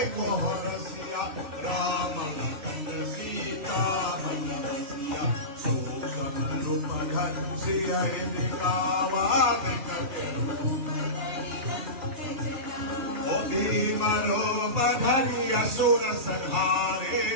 Horasiya Rama Lakanda Sita Malavasiya Susam Rumadhan Siya Indikawa Veka Keru Odi Maro Badhani Asura Sanhare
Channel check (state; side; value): late; left; 3.0 ms